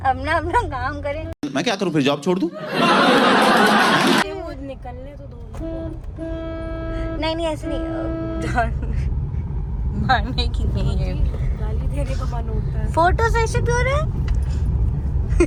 अपना काम करें। मैं क्या करूं फिर, जॉब छोड़ दूं? वो निकलने तो दो। नहीं ऐसे नहीं, मारने की नहीं है, गाली देने का मन होता है। फोटो सेशन क्यों रहा है?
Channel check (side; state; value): both; identical; correlation 1.00